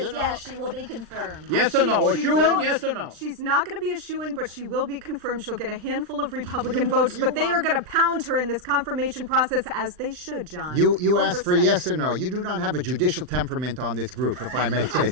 yes, she will be confirmed. Yes or no? A She shoo-in, will- yes or no? She's not going to be a shoo-in, but she will be confirmed. She'll get a handful of Republican votes, but they are going to pound her in this confirmation process, as they should, John. You asked for Oversight. yes or no. You do not have a judicial temperament on this group, if I may say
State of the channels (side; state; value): left; late; 39 ms